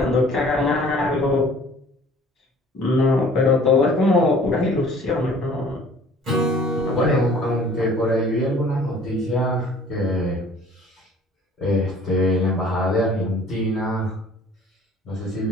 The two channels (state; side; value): normal; both; correlation 0.51